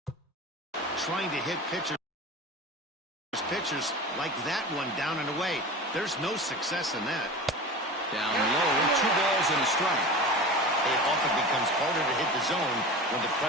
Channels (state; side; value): normal; both; correlation 0.32